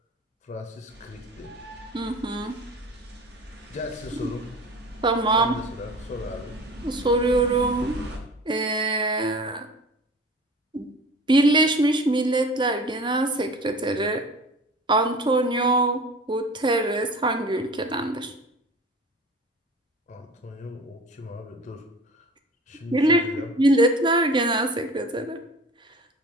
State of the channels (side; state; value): both; normal; correlation 0.41